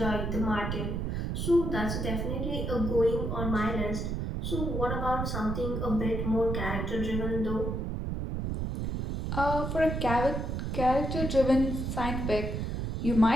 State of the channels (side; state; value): right; noise; rumble, 2 dB below the sound